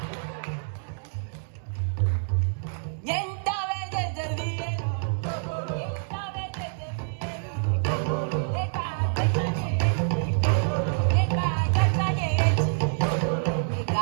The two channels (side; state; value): left; silent; digital silence